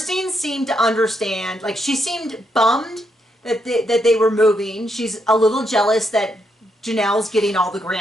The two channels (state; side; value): normal; both; correlation 0.79